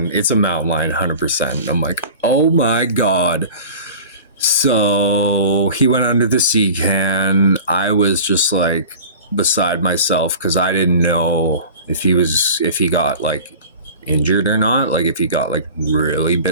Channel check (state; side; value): inverted; both; correlation -0.39